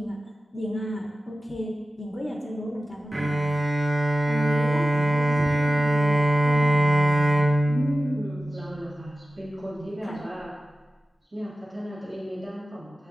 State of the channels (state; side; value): normal; both; correlation 0.95